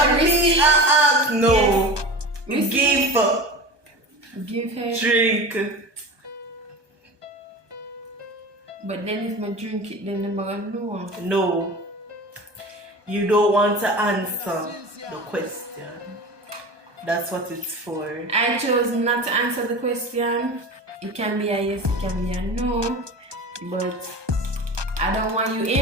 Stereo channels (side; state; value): left; late; 1.2 ms